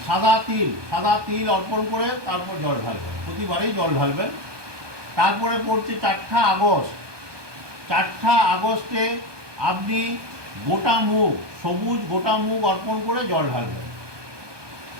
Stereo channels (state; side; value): late; left; 1.2 ms